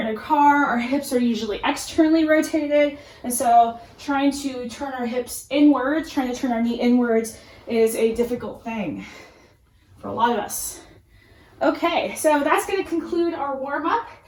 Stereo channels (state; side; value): identical; both; correlation 1.00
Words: in a car, our hips are usually externally rotated, and so trying to turn our hips inwards, trying to turn our knee inwards is a difficult thing for a lot of us. Okay, so that's going to conclude our warm-up,